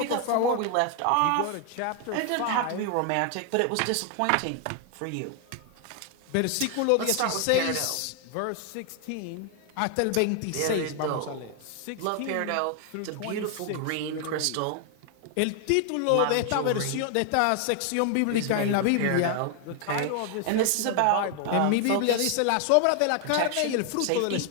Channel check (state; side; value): different; both; correlation 0.00